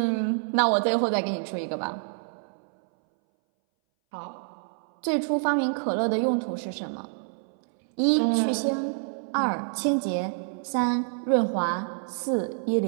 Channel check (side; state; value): left; silent; 60 dB below the other